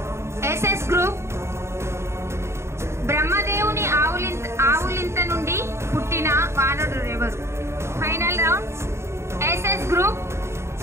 SS group. బ్రహ్మదేవుని ఆవులింత నుండి పుట్టిన వానరుడు ఎవరు? Final round. SS group.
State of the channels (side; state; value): left; late; 0.13 ms